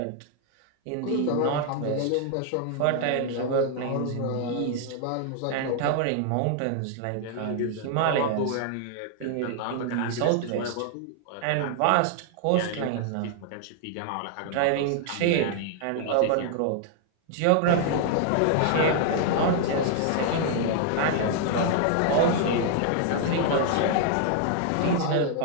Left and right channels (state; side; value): different; both; correlation 0.00